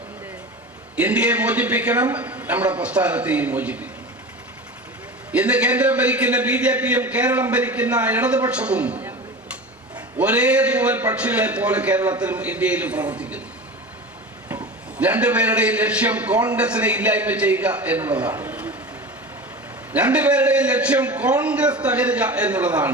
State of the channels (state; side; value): normal; both; correlation 0.31